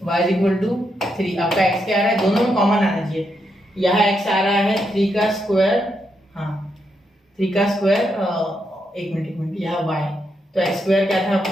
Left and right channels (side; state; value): both; normal; correlation 0.81